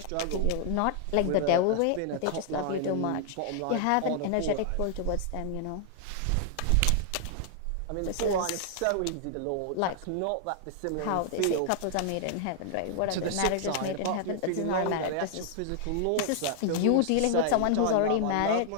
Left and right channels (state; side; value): different; both; correlation -0.01